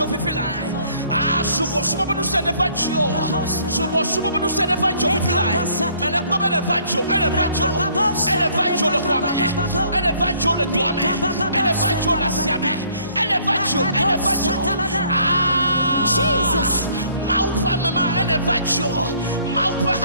if you like. Subo no se never joke. Subo no se never joke if you like. Mais le comme elle va joke, elle va joke le quoi, elle va joke le doigt, elle va joke la siame, elle va joke. Jesus. Maupa mama elevajo, maupa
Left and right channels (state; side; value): inverted; both; correlation -0.60